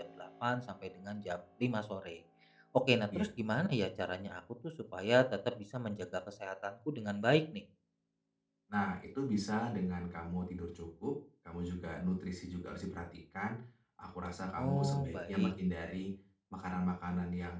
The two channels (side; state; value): both; identical; correlation 1.00